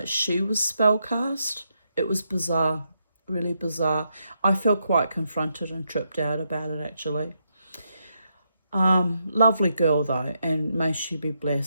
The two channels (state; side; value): inverted; both; correlation -0.80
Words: she was spellcast. It was bizarre, really bizarre. I felt quite confronted and tripped out about it, actually. Lovely girl, though, and may she be